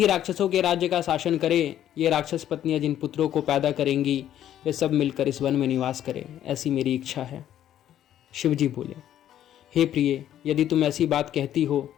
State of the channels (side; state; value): right; quieter; 11.3 dB